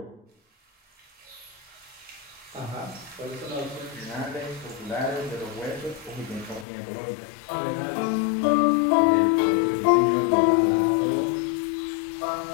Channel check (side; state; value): right; drops out; at 6.7 s